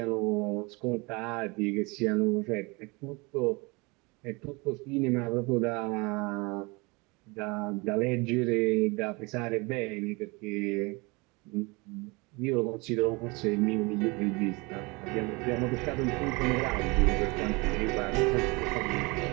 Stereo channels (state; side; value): quieter; left; 26.9 dB